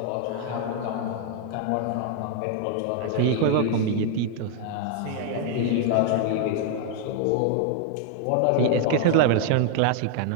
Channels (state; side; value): different; both; correlation 0.00